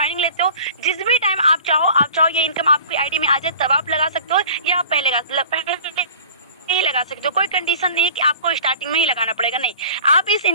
लेते हो जिस भी टाइम आप चाहो ये इनकम आपकी आईडी में आ जाए तब आप लगा सकते हो या आप पहले नहीं लगा सकते हो। कोई कंडीशन नहीं है कि आपको स्टार्टिंग में ही लगाना पड़ेगा, नहीं, आप इस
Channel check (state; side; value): inverted; both; correlation -0.45